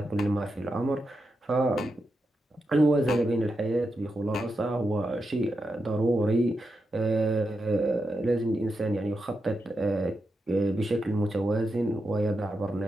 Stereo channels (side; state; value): both; normal; correlation 0.87